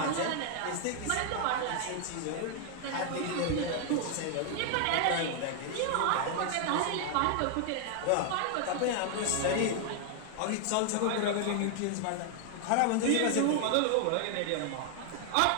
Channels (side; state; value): both; different; correlation 0.00